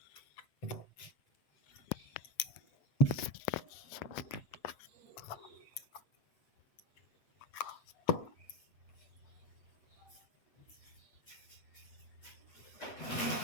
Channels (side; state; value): right; late; 7.9 ms